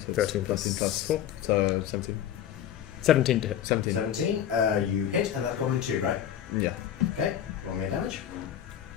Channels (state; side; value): quieter; right; 10.3 dB